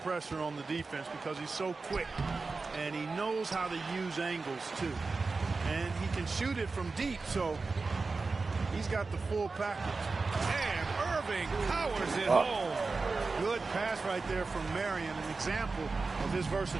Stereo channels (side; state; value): left; quieter; 4.0 dB